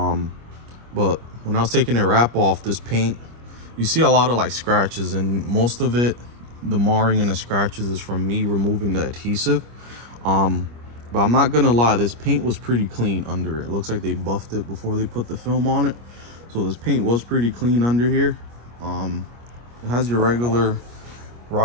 when I was taking the wrap off, this paint, you see a lot of like scratches, and most of it, the marring and the scratches, is from me removing the adhesive. But I'm not gonna lie, this paint was pretty clean under it. It looks like they buffed it before they put the film on it. So this paint was pretty clean under here. It has your regular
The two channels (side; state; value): left; late; 25 ms